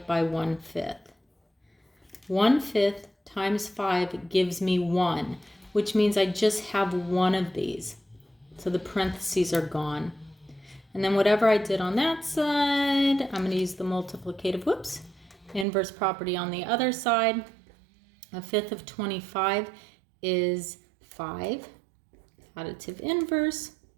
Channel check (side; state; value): left; drops out; at 15.7 s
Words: by 1/5, 1/5 times 5 gives me 1, which means I just have one of these. So the parentheses are gone. And then whatever I did on that side, I'm going to use the multiplicative, inverse property on the other side. 1/5 of 25 is 5. Additive inverse.